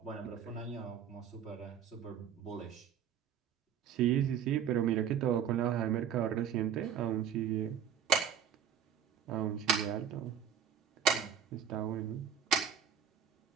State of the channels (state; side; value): quieter; left; 8.4 dB